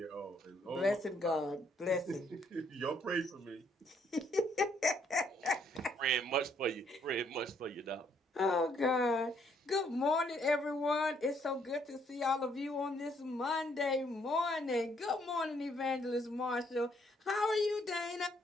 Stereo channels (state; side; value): normal; both; correlation 0.69